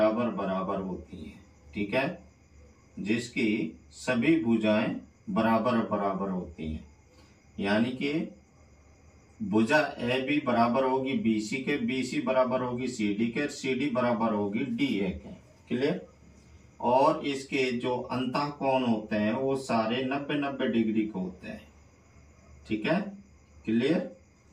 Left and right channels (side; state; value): both; identical; correlation 1.00